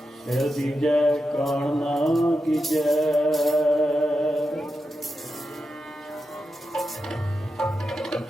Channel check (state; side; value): normal; both; correlation 0.88